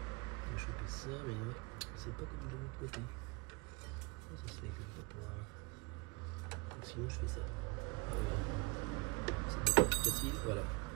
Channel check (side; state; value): left; quieter; 27.4 dB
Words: ça, mais c'est pas comme de l'autre côté. Ça se fait comme ça pour donc sinon je fais ça. C'est beaucoup plus facile, voilà.